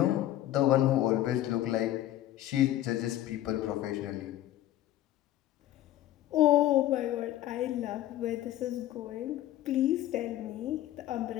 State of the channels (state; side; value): quieter; right; 13.7 dB